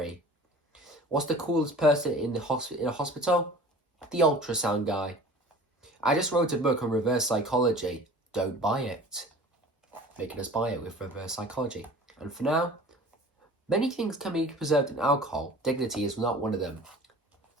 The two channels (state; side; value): normal; both; correlation 0.44